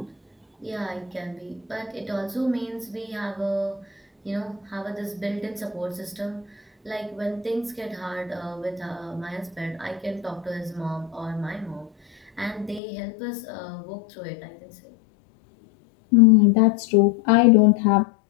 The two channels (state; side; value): drops out; right; at 12.8 s